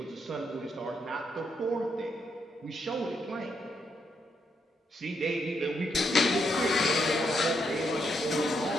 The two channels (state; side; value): normal; both; correlation 0.78